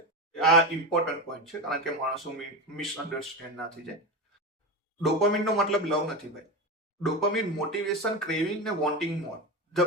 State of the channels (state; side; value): normal; both; correlation 0.20